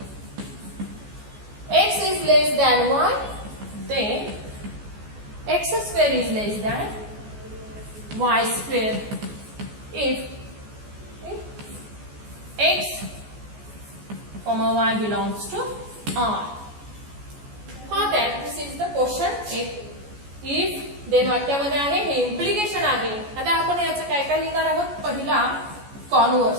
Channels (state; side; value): late; left; 14 ms